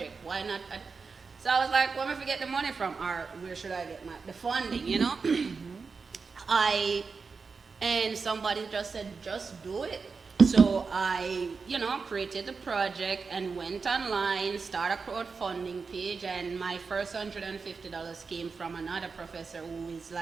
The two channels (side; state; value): left; quieter; 4.9 dB